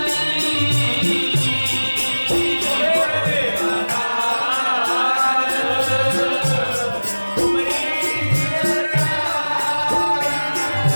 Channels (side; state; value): both; inverted; correlation -1.00